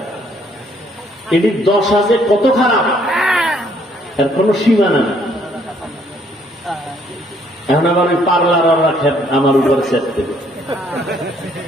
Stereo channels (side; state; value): both; normal; correlation 0.66